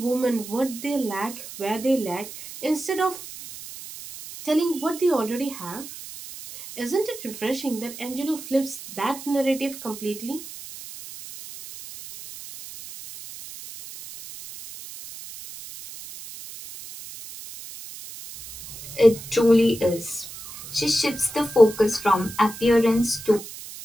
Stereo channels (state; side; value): noise; right; hiss, 13 dB below the sound